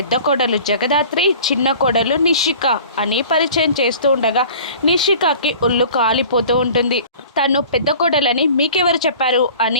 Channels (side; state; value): both; inverted; correlation -0.44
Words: కోడలు జగదాత్రి, చిన్న కోడలు నిషిక అని పరిచయం చేస్తూ ఉండగా నిషికకి ఒళ్ళు కాలిపోతూ ఉంటుంది. తను పెద్ద కోడలని మీకెవరు చెప్పారు